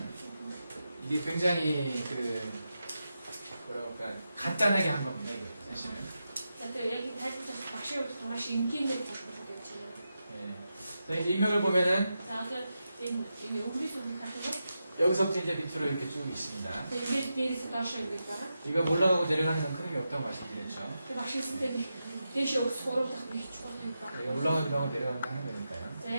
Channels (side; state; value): both; inverted; correlation -0.89